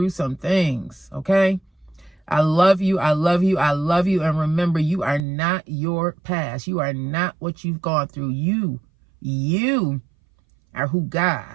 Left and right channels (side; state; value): left; drops out; at 5.2 s